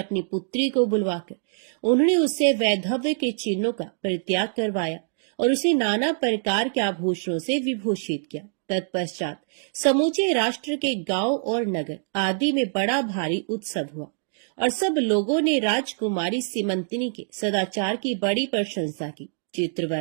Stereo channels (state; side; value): silent; left; digital silence